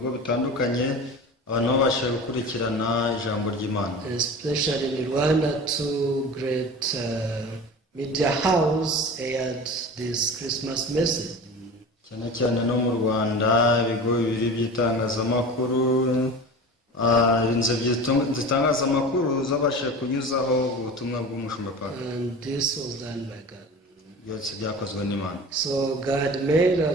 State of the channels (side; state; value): both; normal; correlation 0.34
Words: bitandukanye abantu babasha gukurikirana ijambo ry'Imana. Especially in Rwanda, two great media house aired this Christmas message. Cyane cyane no mu Rwanda ibigo bibiri by'itangazamakuru, inzego z'itangazamakuru zabashije kunyuzaho ubutumwa bw'Umushumba Park. And this was done by God. Byose byakozwe n'Imana. So God made